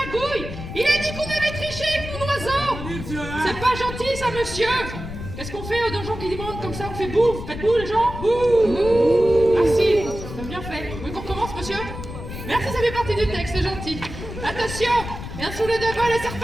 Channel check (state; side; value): noise; left; rumble, 9 dB below the sound